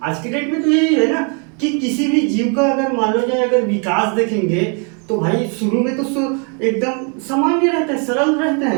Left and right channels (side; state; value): left; quieter; 37.3 dB